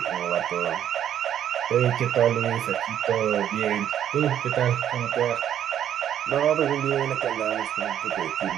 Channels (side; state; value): left; quieter; 10.3 dB